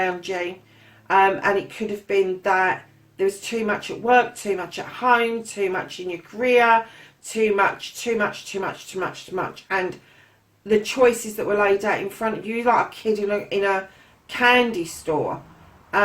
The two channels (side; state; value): both; identical; correlation 1.00